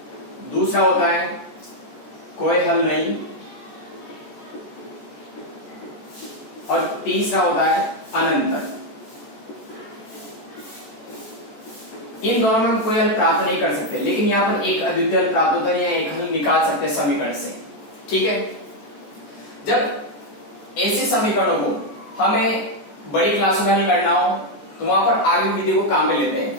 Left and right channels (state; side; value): late; right; 14 ms